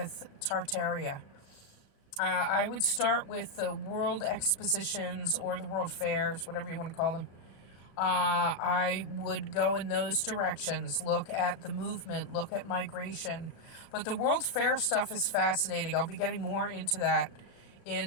Tartaria. I would start with the world expositions or the world fairs, whatever you want to call them. I would go in those directions, look at the movement, look at migration. But the World Fair stuff is fascinating. I'll be getting more into that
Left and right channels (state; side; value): late; right; 36 ms